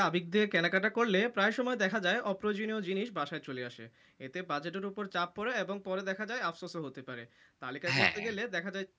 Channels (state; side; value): identical; both; correlation 1.00